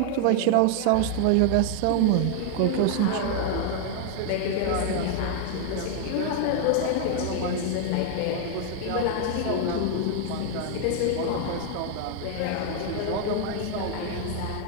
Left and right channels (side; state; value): both; different; correlation 0.00